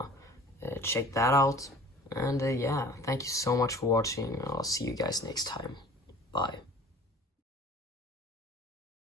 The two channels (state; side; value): normal; both; correlation 0.45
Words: check that out. And yeah, thank you so much for watching. I'll see you guys next time. Bye.